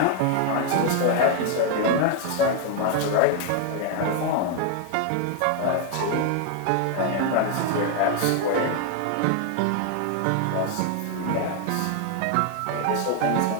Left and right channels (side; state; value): both; different; correlation 0.00